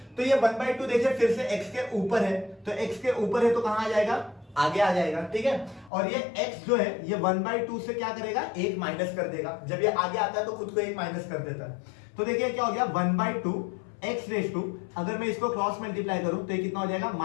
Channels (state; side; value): drops out; right; at 5.9 s